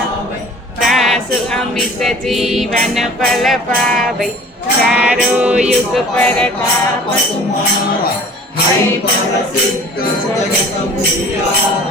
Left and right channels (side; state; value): both; normal; correlation 0.47